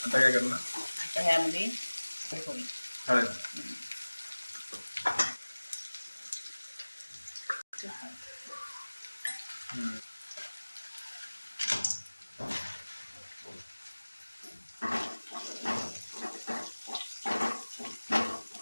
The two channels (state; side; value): inverted; both; correlation -1.00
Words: काय करणार? आता ह्यामध्ये हळद.